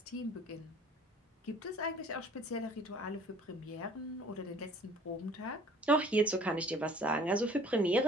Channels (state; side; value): normal; both; correlation 0.52